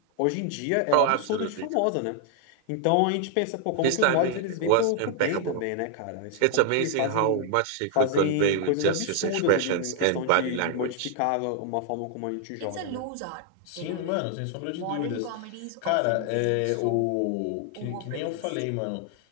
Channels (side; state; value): both; different; correlation 0.00